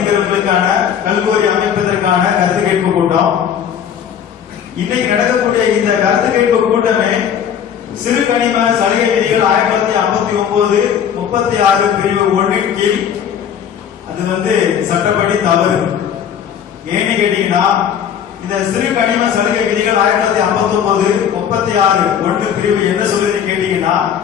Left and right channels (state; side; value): quieter; right; 8.6 dB